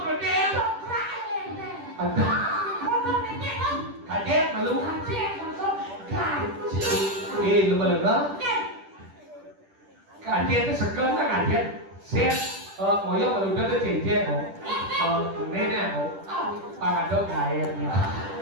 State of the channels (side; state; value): left; late; 10 ms